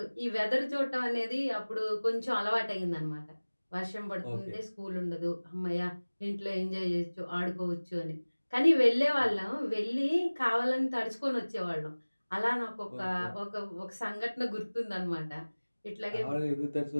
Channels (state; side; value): inverted; both; correlation -1.00